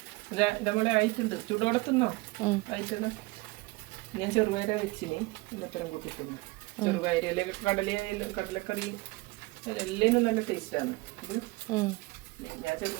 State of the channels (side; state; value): left; quieter; 23.3 dB